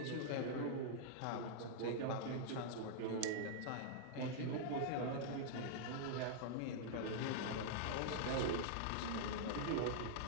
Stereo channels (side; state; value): both; different; correlation -0.01